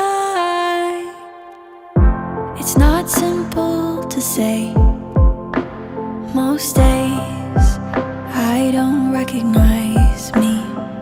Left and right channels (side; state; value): both; identical; correlation 1.00